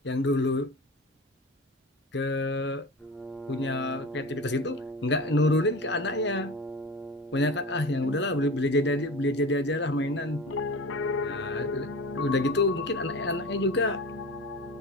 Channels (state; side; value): normal; both; correlation 0.32